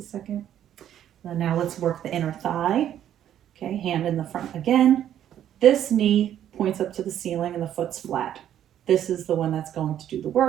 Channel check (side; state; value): left; quieter; 10.8 dB